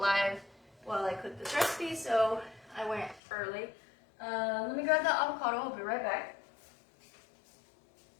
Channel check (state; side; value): drops out; right; at 3.2 s